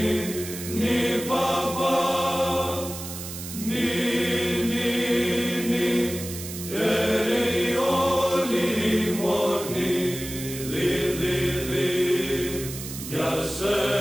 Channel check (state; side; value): noise; right; hiss, 10 dB below the sound